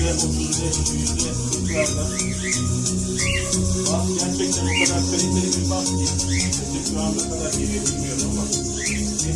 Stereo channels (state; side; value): identical; both; correlation 1.00